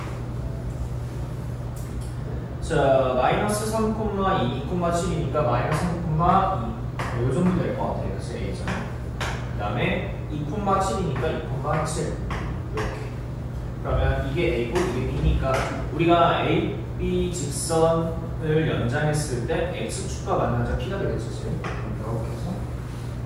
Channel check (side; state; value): both; identical; correlation 1.00